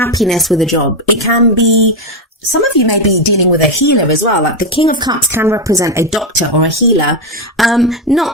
with a job. It can be, some of you may be dealing with a healer as well. Like the King of Cups can represent a doctor or a healer.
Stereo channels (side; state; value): both; normal; correlation 0.08